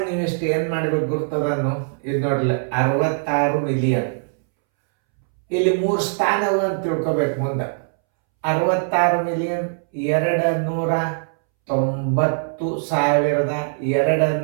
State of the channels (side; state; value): left; silent; 65 dB below the other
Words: ನೀವು ಇಷ್ಟು ಏನು ಮಾಡ್ಬೇಕು ಗುರ್ತದನ್ನು ಇದು ನೋಡ್ಲಿ, 66 ಮಿಲಿಯನ್. ಇಲ್ಲಿ 3 ಸ್ಥಾನವು ಅಂತ ತಿಳ್ಕೊಬೇಕು. ಮುಂದೆ 66 ಮಿಲಿಯನ್